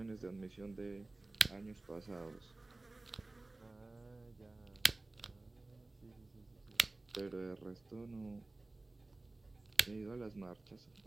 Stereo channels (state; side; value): quieter; left; 3.0 dB